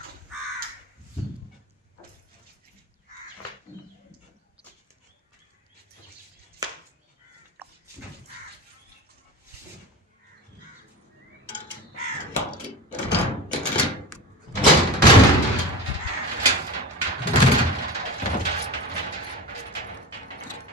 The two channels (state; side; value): normal; both; correlation 0.30